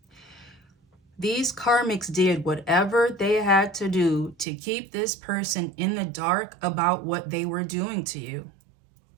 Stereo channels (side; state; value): left; drops out; at 4.5 s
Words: These karmics did whatever they had to do to keep this person in the dark about what they were doing to you.